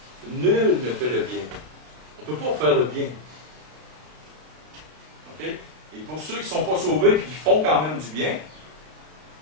Nul ne fait le bien. On ne peut pas faire le bien. OK? Et pour ceux qui ne sont pas sauvés et qui font quand même du bien,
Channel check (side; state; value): left; late; 32 ms